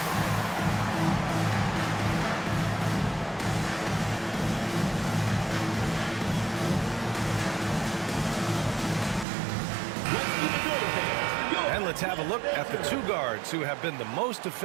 Let's have a look at the 2 guards who have been the most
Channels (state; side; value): drops out; left; at 9.2 s